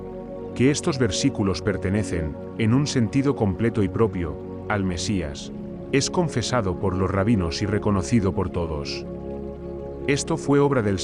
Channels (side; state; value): both; identical; correlation 1.00